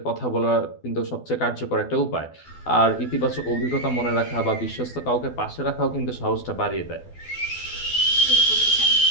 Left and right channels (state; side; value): late; right; 12 ms